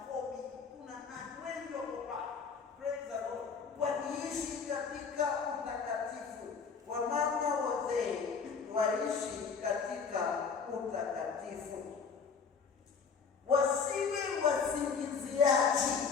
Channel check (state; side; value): quieter; right; 5.7 dB